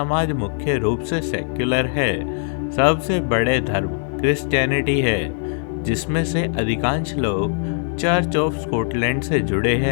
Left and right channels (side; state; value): right; silent; digital silence